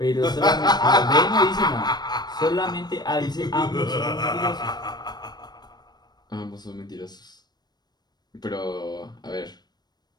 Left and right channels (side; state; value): right; late; 0.20 ms